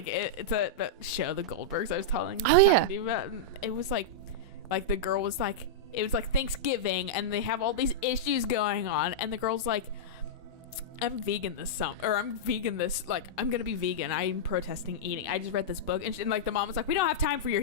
that show, The Goldbergs. I was talking Oh, yeah. to you about. And it was like the girl was like, it was like Thanksgiving, and they have all these issues going on, and the girl's like, I'm vegan this summer, or I'm vegan this, like, I'm gonna be vegan. I'm protesting eating. I just read this book, and like the mom was like, we don't have time for your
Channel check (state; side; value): normal; both; correlation -0.09